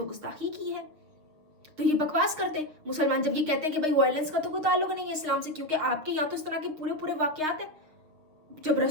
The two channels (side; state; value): left; late; 6.3 ms